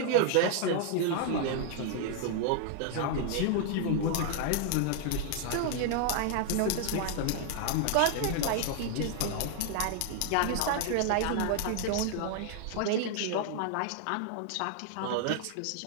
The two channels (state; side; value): different; both; correlation 0.00